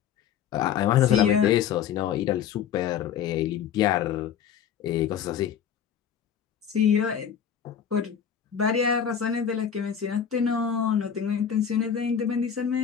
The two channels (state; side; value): quieter; right; 8.4 dB